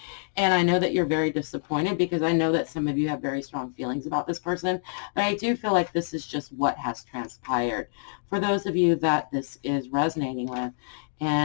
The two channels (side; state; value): right; silent; digital silence